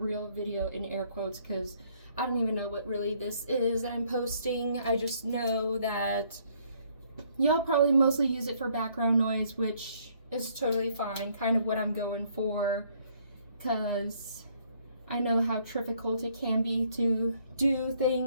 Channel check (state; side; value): inverted; both; correlation -0.65